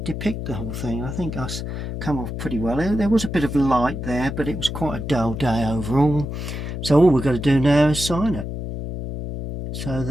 depict the whole thing. I think us come off pretty well. There was a bit of light there, but it was quite a dull day overall. So all we've got to do now is sign it, so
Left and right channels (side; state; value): left; noise; hum, 6 dB below the sound